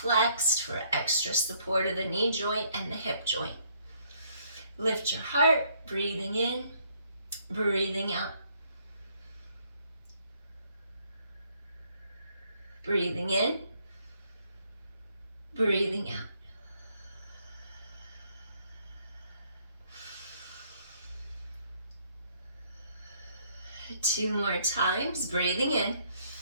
for extra support of the knee joint and the hip joint. Lift your heart, breathing in, breathing out. Breathing in, breathing out. Two more times, breathing in,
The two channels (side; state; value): both; inverted; correlation -0.67